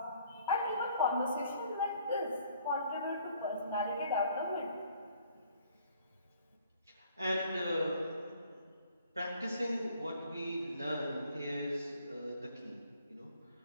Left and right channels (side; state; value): both; inverted; correlation -0.59